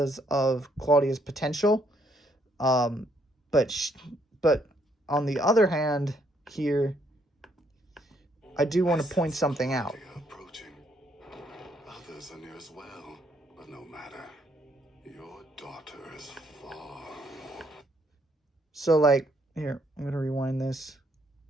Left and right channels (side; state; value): both; normal; correlation 0.70